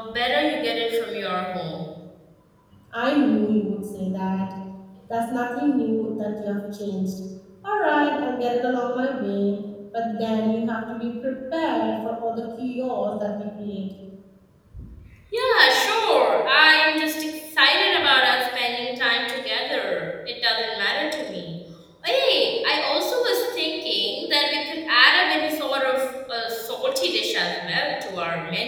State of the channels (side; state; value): both; identical; correlation 1.00